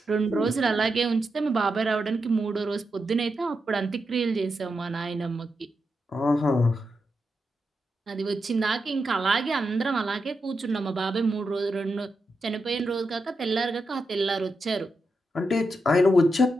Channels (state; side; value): normal; both; correlation 0.86